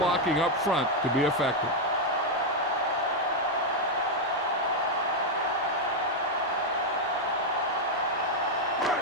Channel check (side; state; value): both; normal; correlation 0.01